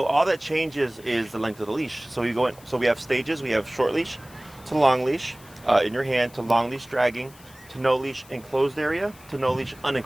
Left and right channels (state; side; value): noise; left; hiss, 23 dB below the sound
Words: all that changes is the length of the leash. So you go in. So we have stages. We have short leash to long leash in your hand, to long leash dragging, to no leash enclosed area, to no leash